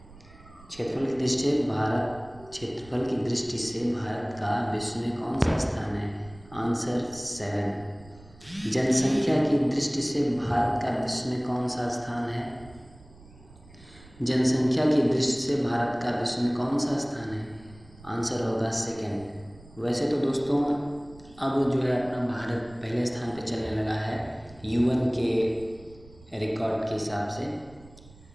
क्षेत्रफल की दृष्टि से भारत का विश्व में कौन सा स्थान है? आंसर 7। जनसंख्या की दृष्टि से भारत का विश्व में कौन सा स्थान है? जनसंख्या की दृष्टि से भारत का विश्व में कौन सा स्थान है? आंसर होगा 2। वैसे तो दोस्तों अब जो है अपना भारत पहले स्थान पे चलने लगा है यूएन के रिकॉर्ड के हिसाब से।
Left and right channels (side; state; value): right; noise; rumble, 22 dB below the sound